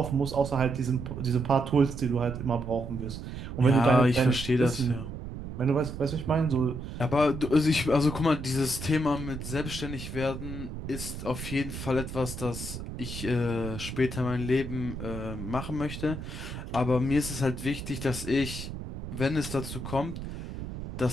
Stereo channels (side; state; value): right; noise; rumble, 8 dB below the sound